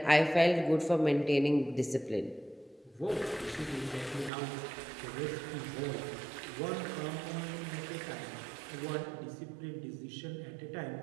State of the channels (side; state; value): left; drops out; at 4.3 s